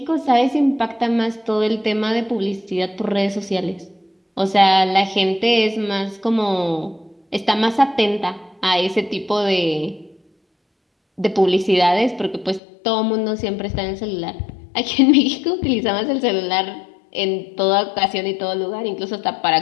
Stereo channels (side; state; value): right; drops out; at 12.6 s